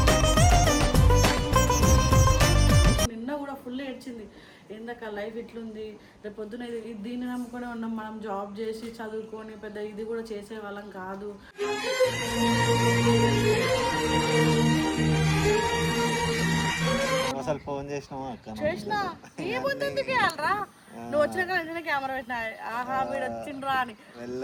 నిన్న కూడా ఫుల్ ఏడ్చింది. ఏందక్క లైఫ్ ఇట్లుంది, రేపు పొద్దున దీన్ని నమ్ముకొని ఉన్నాం, మనం జాబ్ చేసి చదువుకొని పెద్ద ఇది కూడా చేసే వాళ్ళం కాదు. అసలు ఫోన్ చేసినావా చేసినా ఏముందుకు వెళ్ళరా నువ్వు వచ్చినాక వెంటనే కెమెరా పెట్టినా ఆహా వీడు వచ్చిండ్రా అని.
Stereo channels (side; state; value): both; identical; correlation 1.00